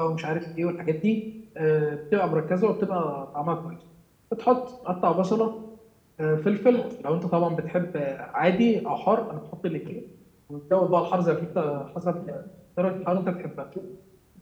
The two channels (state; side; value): identical; both; correlation 1.00